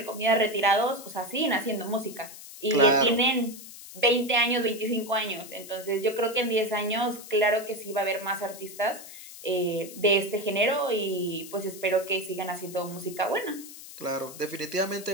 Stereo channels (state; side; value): noise; left; hiss, 15 dB below the sound